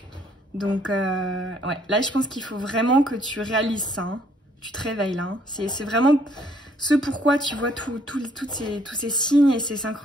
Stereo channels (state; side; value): normal; both; correlation 0.65